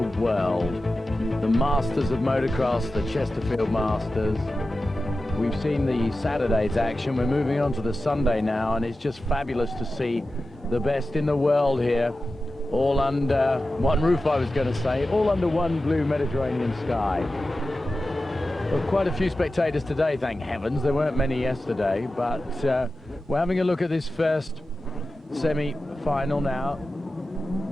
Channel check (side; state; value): both; normal; correlation 0.94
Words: world. The Masters of Motocross, the Chesterfield Masters. We've seen the Saturday's action. We're moving on to the Sunday now, and it's just fabulous to see the best in the world here. All under one roof, I was going to say, all under one blue Mediterranean sky. Well, quite a few spectators today, thank heavens. There weren't many yesterday, but we're having a look at this first semi-final now.